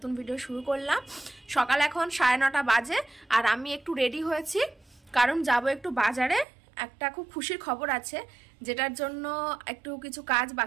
ভিডিও শুরু করলাম। সকাল এখন 9:30 বাজে আর আমি একটু রেডি হয়েছি কারণ যাব একটু বাজারে। একটা খুব খুশির খবর আছে যেটার জন্য একটু কিছু কাজ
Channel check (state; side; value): drops out; left; at 6.5 s